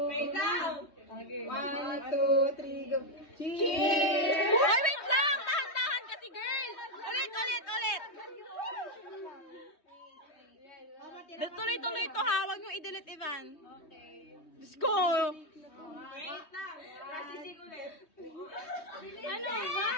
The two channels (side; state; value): right; late; 3.2 ms